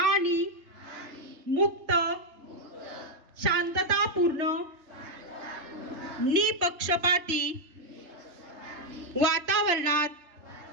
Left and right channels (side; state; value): left; late; 3.3 ms